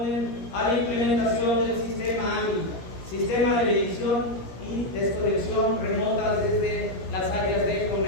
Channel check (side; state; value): right; late; 16 ms